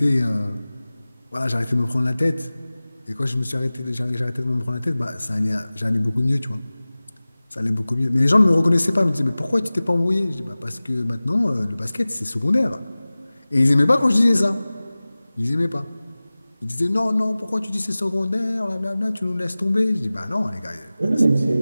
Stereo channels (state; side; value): inverted; both; correlation -0.98